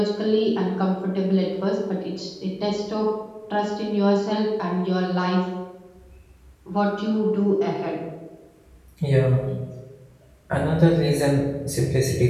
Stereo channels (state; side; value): identical; both; correlation 1.00